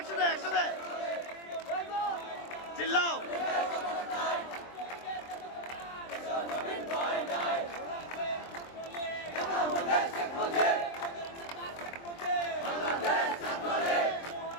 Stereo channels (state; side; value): late; right; 23 ms